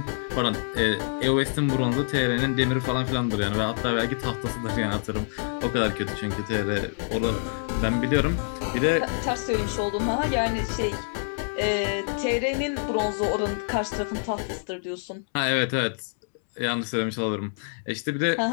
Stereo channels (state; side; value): silent; right; digital silence